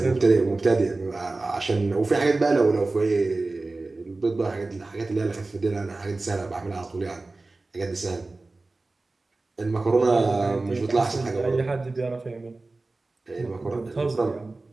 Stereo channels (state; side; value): quieter; left; 3.3 dB